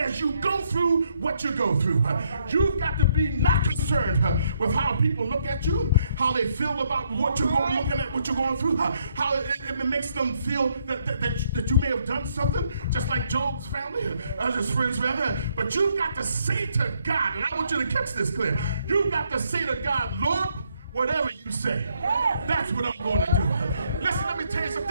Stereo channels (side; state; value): both; inverted; correlation -0.72